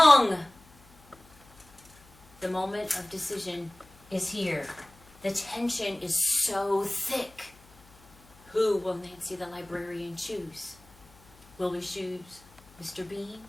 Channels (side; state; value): left; noise; hum, 26 dB below the sound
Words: The moment of decision is here. The tension is so thick. Who will Nancy the librarian choose? Will we choose Mr. Bean